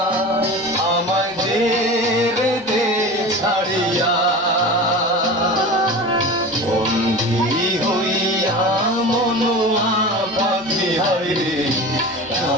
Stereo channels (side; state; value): both; normal; correlation 0.32